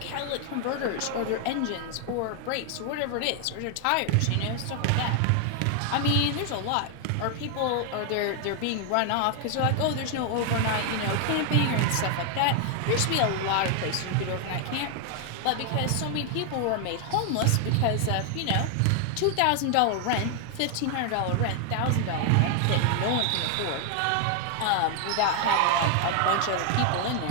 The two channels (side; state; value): both; different; correlation 0.00